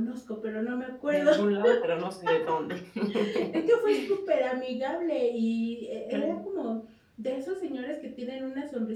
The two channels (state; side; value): identical; both; correlation 1.00